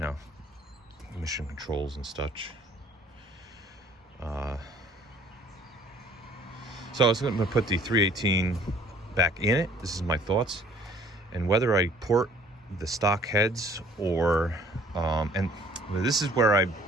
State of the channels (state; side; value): normal; both; correlation 0.56